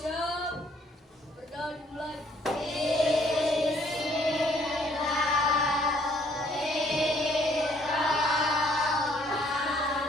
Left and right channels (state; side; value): normal; both; correlation 0.64